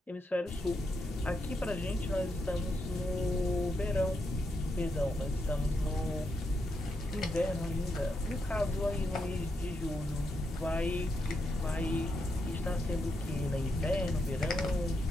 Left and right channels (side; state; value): both; normal; correlation 0.82